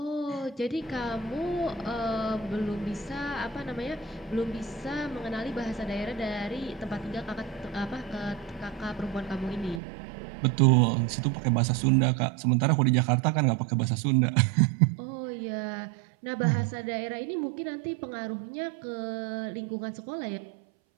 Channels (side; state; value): left; drops out; at 9.8 s